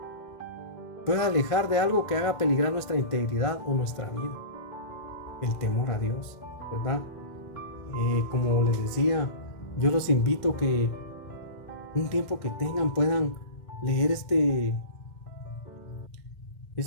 puede alejar de algo que haga peligrar nuestra integridad o nuestra vida. El temor a Dios, ¿verdad? Como les decía, yo los invito que un tiempo que tengan puedan leer este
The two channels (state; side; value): late; right; 2.1 ms